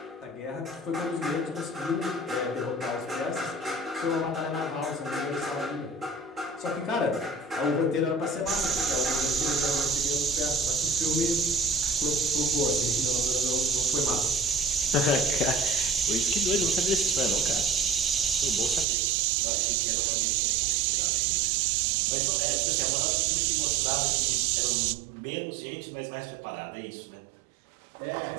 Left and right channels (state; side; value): drops out; left; at 18.9 s